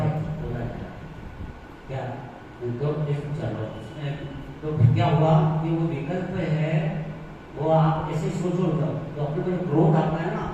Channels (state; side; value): identical; both; correlation 1.00